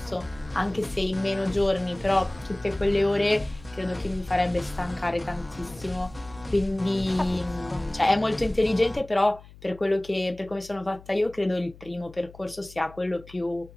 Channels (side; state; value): left; noise; hum, 21 dB below the sound